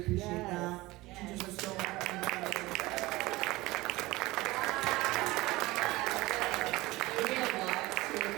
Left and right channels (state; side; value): quieter; left; 19.9 dB